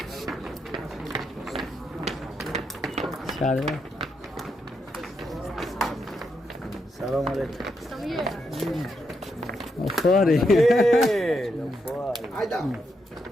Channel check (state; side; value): normal; both; correlation 0.81